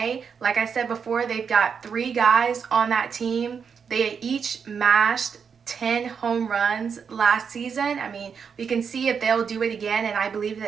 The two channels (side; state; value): left; quieter; 6.5 dB